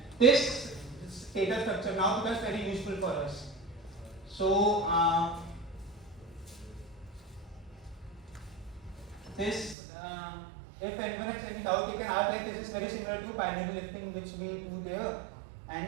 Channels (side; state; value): left; drops out; at 9.8 s